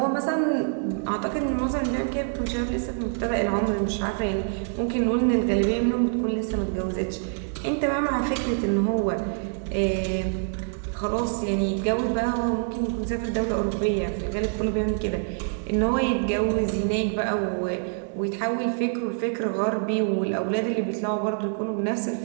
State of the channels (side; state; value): left; silent; digital silence